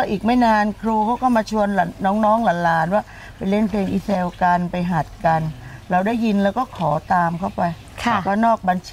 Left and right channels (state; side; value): identical; both; correlation 1.00